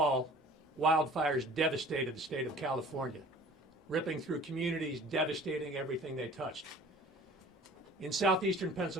wildfires devastated the state of California, ripping through communities, devastating everything they touched. In southeastern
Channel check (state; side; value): normal; both; correlation 0.47